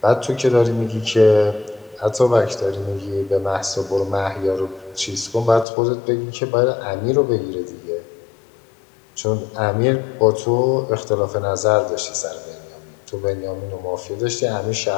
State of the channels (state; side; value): drops out; right; at 5.7 s